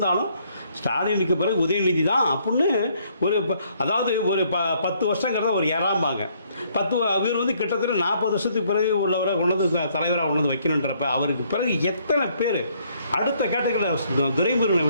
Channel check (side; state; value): both; inverted; correlation -0.67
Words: ஸ்டாலினுக்கு பிறகு உதயநிதி தான் அப்படின்னு அதாவது ஒரு 10 வருஷங்கிறத ஒரு ஏறாம்பாங்க. இவர் வந்து கிட்டத்தட்ட 40 வருஷத்துக்கு பிறகு உள்ளவரை கொண்டு தலைவராக கொண்டு வந்து வைக்கணுன்றப்ப அவருக்கு பிறகு எத்தனை பேர் அடுத்த கேட்டகரியில் துரைமுருகனை